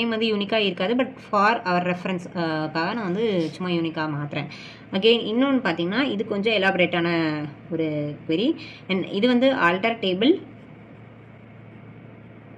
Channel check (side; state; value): both; identical; correlation 1.00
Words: வந்து யூனிக்காக இருக்காது, பட் ஃபார் அவர் ரெஃபரன்ஸ்க்காக நான் வந்து சும்மா யூனிக்காக மாற்றுறேன். அகெயின் இன்னொன்று பார்த்தீங்கன்னா இது கொஞ்சம் எலாபரேட்டான ஒரு query. அண்ட் இது வந்து alter